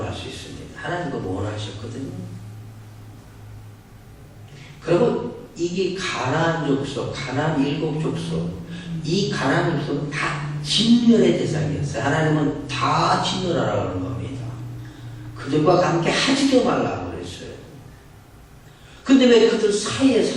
수 있습니다. 하나님 그거 원하셨거든요. 그리고 이게 가나안 족속, 가나안 7족속, 이 가나안 족속은 다 진멸의 대상이었어요. 하나님은 다 진멸하라고 하는 겁니다. 그들과 함께 하지도 말라고 그랬어요. 근데 왜 그들 사이에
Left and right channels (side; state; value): both; identical; correlation 1.00